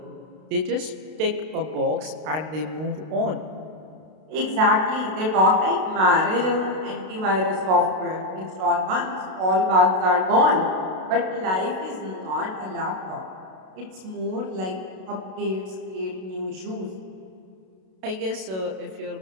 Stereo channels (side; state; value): left; late; 32 ms